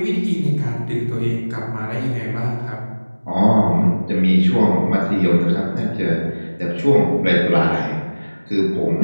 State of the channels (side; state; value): both; inverted; correlation -1.00